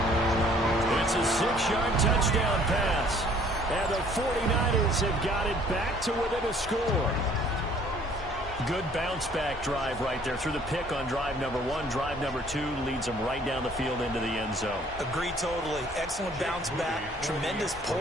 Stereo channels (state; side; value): normal; both; correlation 0.58